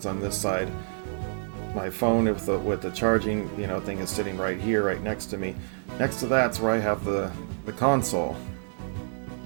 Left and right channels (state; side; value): silent; left; digital silence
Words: on this side. My phone with the charging, thing is sitting right here, right next to me. Next to that's where I have the console.